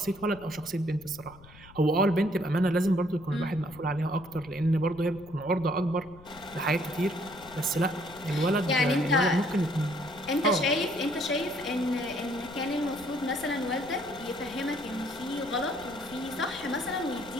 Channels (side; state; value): left; noise; rumble, 21 dB below the sound